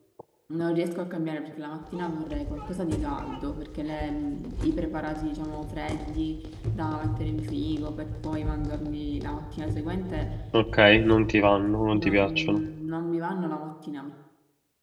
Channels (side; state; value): both; identical; correlation 1.00